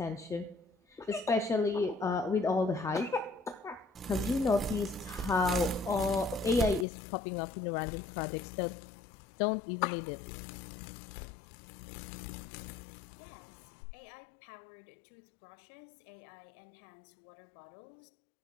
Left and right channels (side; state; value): right; drops out; at 6.9 s